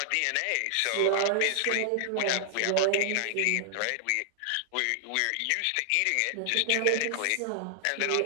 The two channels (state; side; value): different; both; correlation 0.00